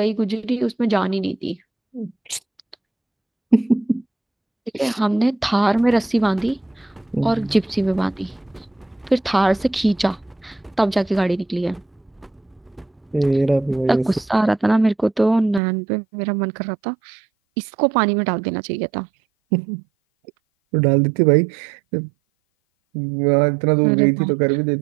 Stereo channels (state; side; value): drops out; left; at 15.6 s